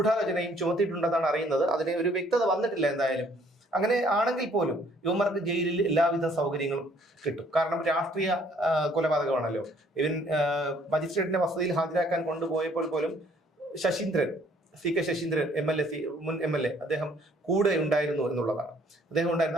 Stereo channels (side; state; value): both; normal; correlation 0.61